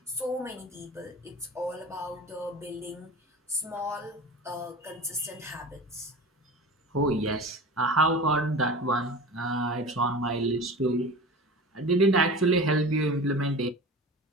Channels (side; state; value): both; normal; correlation 0.34